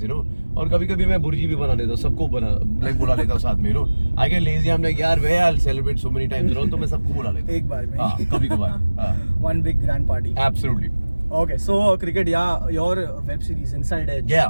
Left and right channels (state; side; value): inverted; both; correlation -1.00